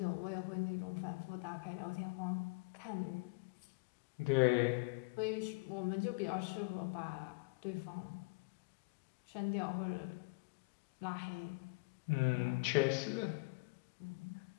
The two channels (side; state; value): right; quieter; 28.0 dB